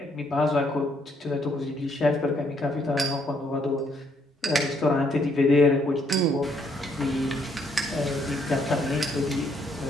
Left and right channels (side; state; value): both; normal; correlation 0.70